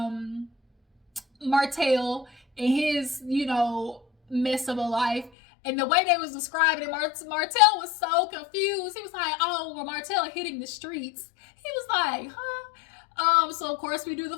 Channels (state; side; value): drops out; right; at 5.3 s